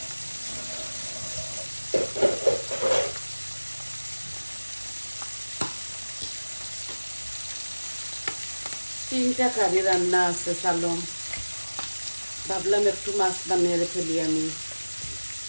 তিনটা কারি রান্না আছে সালম, ভাবলাম একটু মাছ বানিয়ে ফেলি আমি।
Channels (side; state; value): both; inverted; correlation -1.00